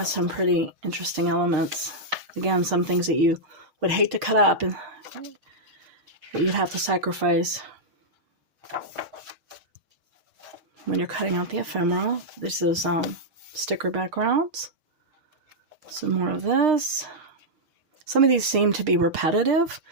some pretty interesting elements. Again, some things that you would hate to cut up and that you'd have to sacrifice when you're cutting out the ephemera. This is sticker backgrounds. Some more of this. Some of these seem to be repetitive.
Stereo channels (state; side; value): late; left; 6.6 ms